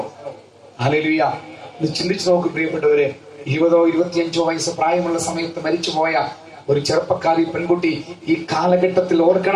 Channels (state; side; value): identical; both; correlation 1.00